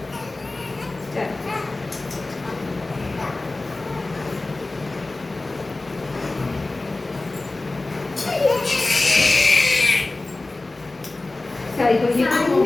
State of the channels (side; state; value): right; quieter; 3.1 dB